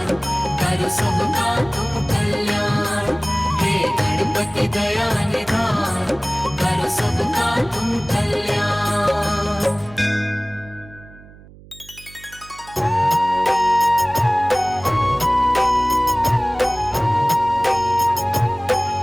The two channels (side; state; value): right; noise; hum, 22 dB below the sound